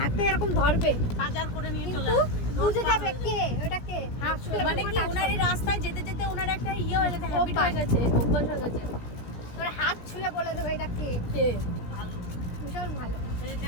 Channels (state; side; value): late; right; 17 ms